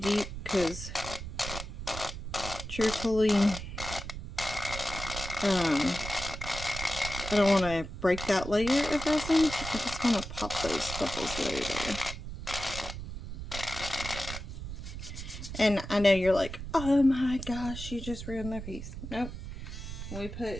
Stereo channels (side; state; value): right; noise; rumble, 8 dB below the sound